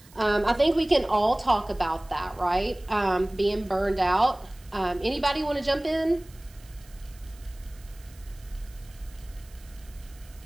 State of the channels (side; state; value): right; noise; hiss, 25 dB below the sound